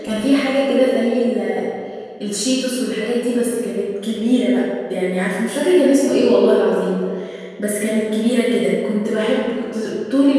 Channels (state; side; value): identical; both; correlation 1.00